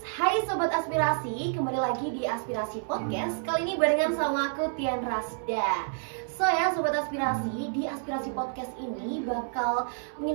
Hai Sobat Aspirasi, kembali lagi di Aspirasi Podcast. Kali ini barengan sama aku Tian Rasda. So ya Sobat Aspirasi, di Aspirasi Podcast ini bakal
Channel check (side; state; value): left; silent; 59 dB below the other